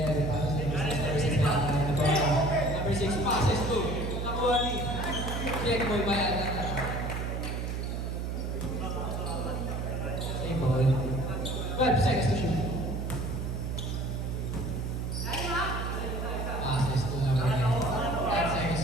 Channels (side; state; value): right; noise; hum, 3 dB below the sound